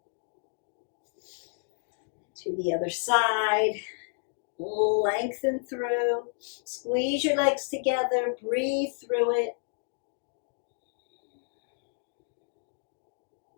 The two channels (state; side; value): silent; right; digital silence